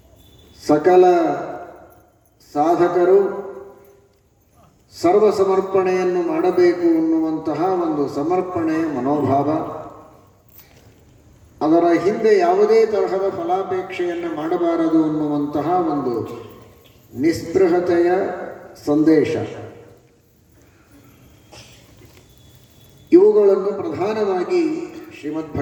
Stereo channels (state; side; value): identical; both; correlation 1.00